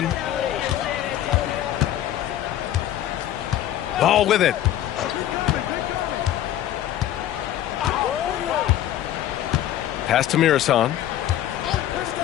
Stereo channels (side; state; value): right; quieter; 12.3 dB